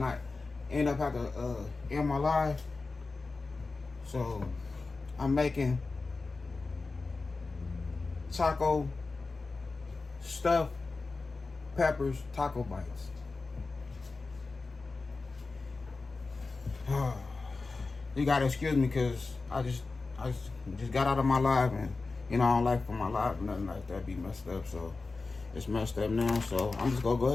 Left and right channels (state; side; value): quieter; right; 3.9 dB